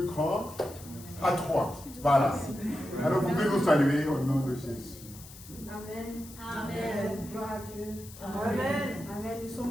grand, à 3. Voilà. Alors vous pouvez nous saluer au nom de Jésus. Amen. Amen. Gloire à Dieu. Amen. Amen. Nous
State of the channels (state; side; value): noise; left; hiss, 17 dB below the sound